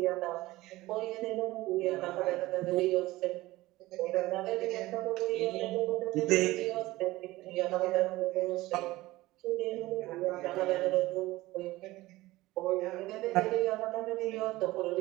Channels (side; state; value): left; quieter; 18.4 dB